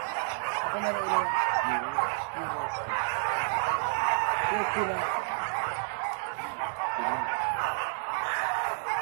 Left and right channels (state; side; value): silent; left; digital silence